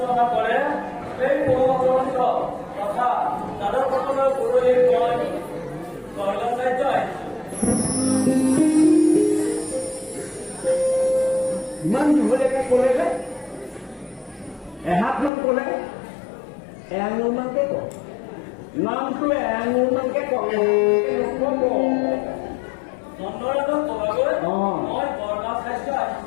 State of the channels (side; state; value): right; drops out; at 15.3 s